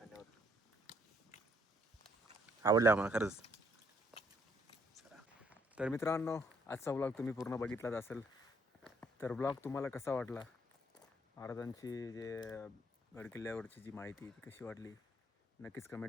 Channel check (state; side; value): normal; both; correlation 0.67